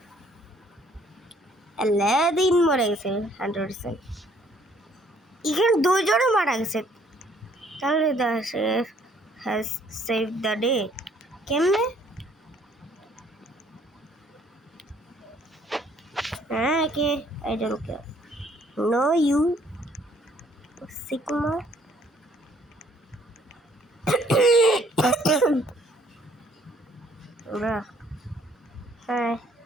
আলাদিন মরে গেছে 100%। এখানে দুইজনও মারা গেছে। তাহলে the chef has save the day. কেমনে? হ্যাঁ, কে? I don't care. No you sigma. ওরা হ্যাঁ,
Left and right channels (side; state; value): both; normal; correlation 0.63